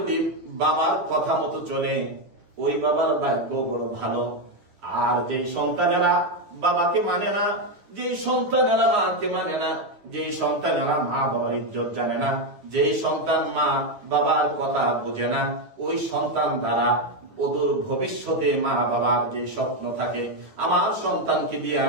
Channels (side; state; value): left; late; 9.7 ms